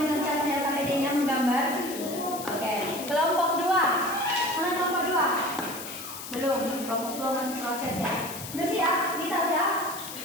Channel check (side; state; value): left; noise; hiss, 10 dB below the sound